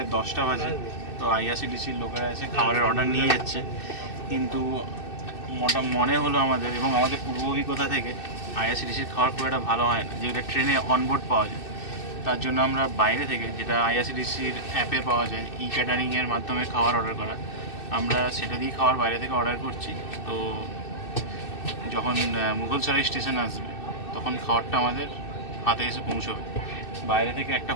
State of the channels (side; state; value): right; late; 2.6 ms